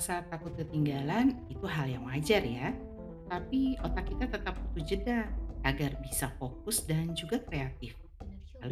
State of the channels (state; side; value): identical; both; correlation 1.00